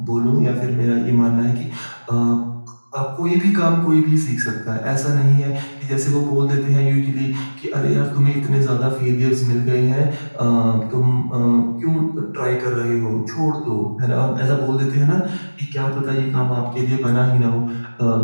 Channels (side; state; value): both; inverted; correlation -1.00